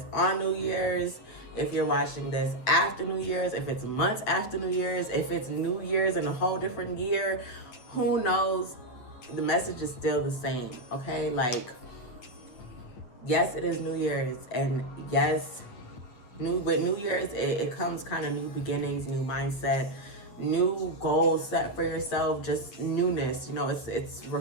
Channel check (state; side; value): late; right; 8.9 ms